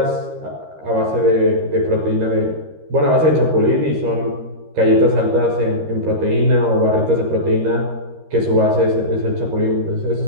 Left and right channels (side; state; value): left; late; 13 ms